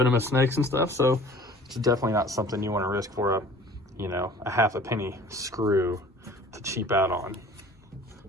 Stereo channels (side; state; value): both; normal; correlation 0.47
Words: and stuff, so it's definitely not something you want to risk for a 1/2 penny screw to cheap out on,